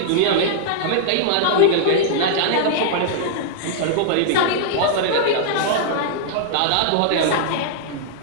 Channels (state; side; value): different; both; correlation -0.01